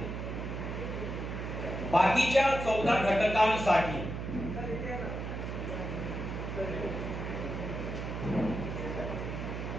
बाकीच्या 14 घटकांसाठी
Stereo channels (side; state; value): right; noise; hum, 5 dB below the sound